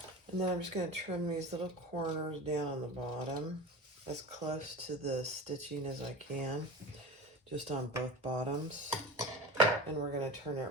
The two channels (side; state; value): both; normal; correlation 0.31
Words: And then I'm just going to trim these little corners down on the bottom as close to the stitching as I can, just on both bottoms. And we're going to turn it